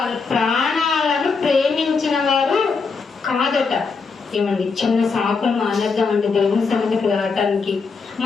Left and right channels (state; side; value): quieter; right; 4.8 dB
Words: ప్రాణాలను ప్రేమించిన వారు కాదట. ఏమండి చిన్న సాకులు మానేద్దామండి దేవుని సన్నిధికి రావటానికి.